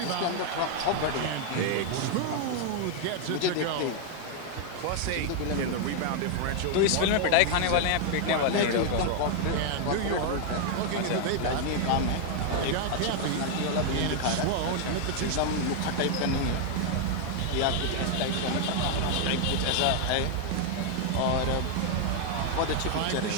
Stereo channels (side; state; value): both; different; correlation 0.00